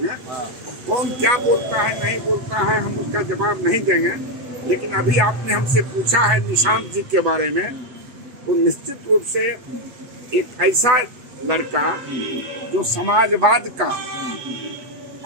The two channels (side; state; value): left; late; 7.4 ms